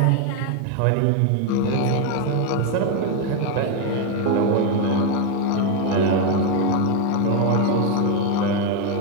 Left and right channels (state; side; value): different; both; correlation 0.02